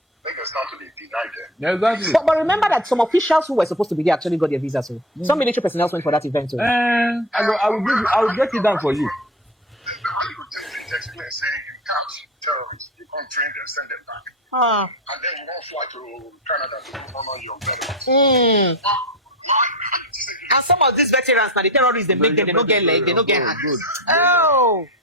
It's not to be denied them. Exactly. But remember that some officials who were supposed to be there actually got their visa. So some military personnel went for that event. So I will break it down for you. Explain saying you catch terrorists, you come train them, send them back. And then you won't fly to Canada to honor your veterans. And some of these veterans now, the terrorists, they make them, they don't get leg, they don't get hands. Oh,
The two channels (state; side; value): normal; both; correlation 0.24